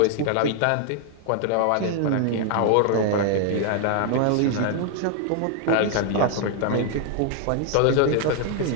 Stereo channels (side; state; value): both; different; correlation 0.00